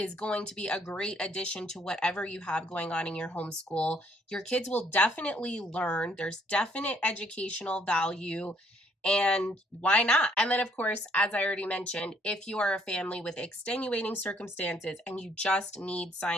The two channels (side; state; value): both; normal; correlation 0.66